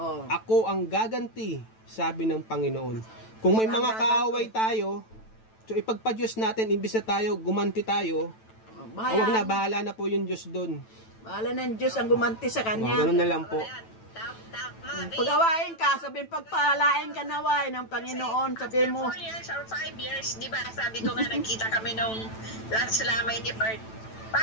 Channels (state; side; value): late; right; 9.1 ms